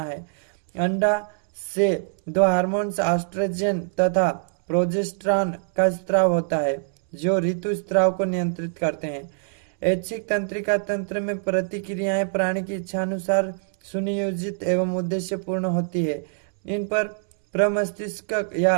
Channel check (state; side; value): silent; left; 63 dB below the other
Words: है। अंडा से 2 हार्मोन्स एस्ट्रोजन तथा प्रोजेस्टेरॉन का स्राव होता है जो ऋतुस्राव को नियंत्रित करते हैं। ऐच्छिक तंत्रिका तंत्र में प्रतिक्रियाएं प्राणी की इच्छानुसार सुनियोजित एवं उद्देश्यपूर्ण होती है। इन पर प्रमस्तिष्क